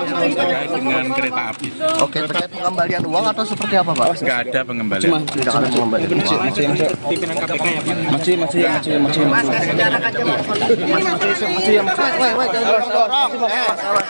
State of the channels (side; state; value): both; inverted; correlation -1.00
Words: Terkait dengan kereta api. Oke, terkait pengembalian uang atau seperti apa Pak? Nggak ada pengembalian. Tidak ada pengembalian uang. Pimpinan KPK ya, Pak. Masih.